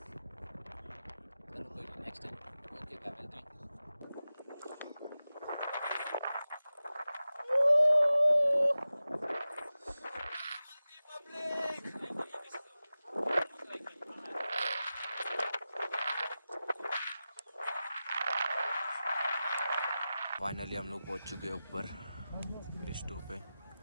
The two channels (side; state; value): both; inverted; correlation -0.95